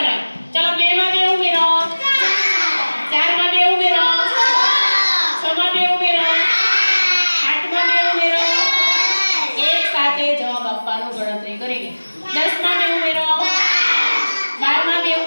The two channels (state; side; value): inverted; both; correlation -1.00